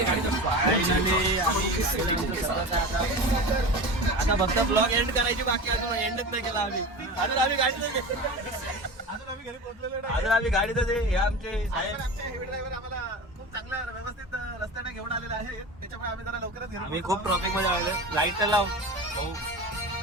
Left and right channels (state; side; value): normal; both; correlation 0.30